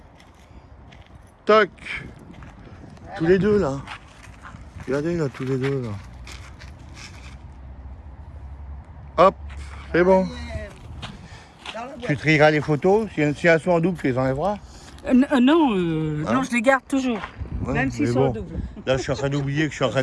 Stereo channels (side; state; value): both; identical; correlation 1.00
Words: Toc. Tous les deux là. Regardez là, tous les deux là. Hop, c'est bon. Dans la Tu boîte. trieras les photos. Si elles sont en double, tu les enlèveras. non, Hein? non, je les garde toujours, Ouais, même s'ils mais sont bon. doubles. Là, je suis en train d'oublier que je suis en train